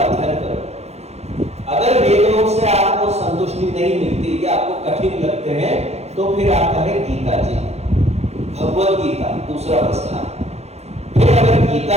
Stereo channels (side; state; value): left; late; 0.31 ms